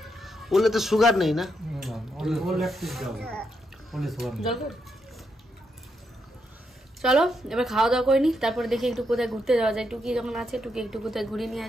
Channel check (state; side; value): normal; both; correlation 0.81